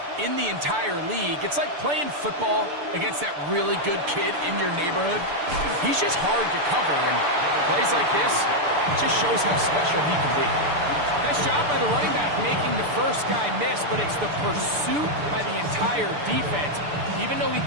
in the entire league. It's like playing football against that really good kid in your neighborhood. He's just hard to cover, and plays like this, it just shows how special he can be. Nice job by the running back making the first guy miss, but it's the pursuit by the entire defense. Even though he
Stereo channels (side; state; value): left; late; 6.8 ms